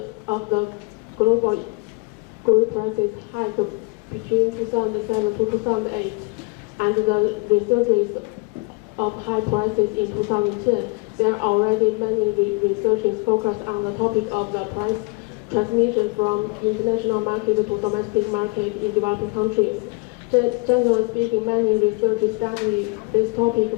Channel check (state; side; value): quieter; right; 29.2 dB